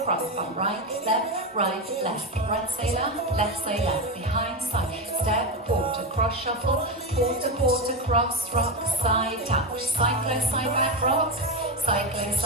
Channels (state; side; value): normal; both; correlation 0.13